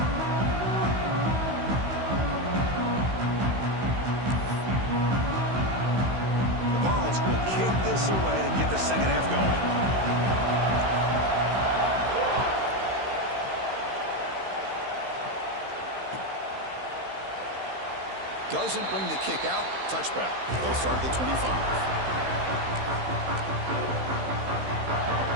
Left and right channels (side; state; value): left; late; 16 ms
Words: The Vols will kick this away to get the second half going. Doesn't bring the kick out. Touchback. They'll start at the 25.